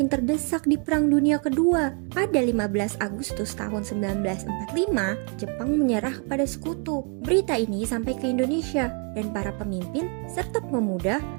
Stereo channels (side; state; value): left; quieter; 36.6 dB